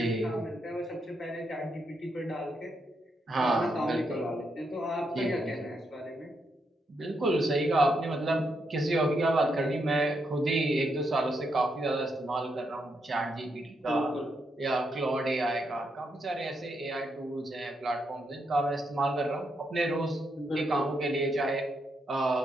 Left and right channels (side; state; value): both; normal; correlation 0.80